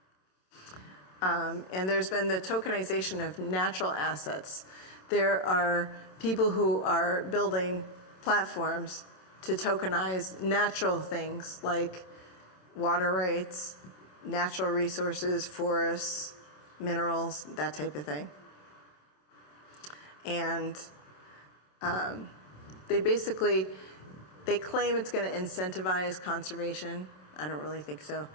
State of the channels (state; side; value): late; right; 27 ms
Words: And there's been the tokenization of natural assets. There are people who are building platforms to tokenize natural things like water rights, natural resources, forests, minerals, that type of thing. And they claim it's going to incentivize conservation. I don't really think so.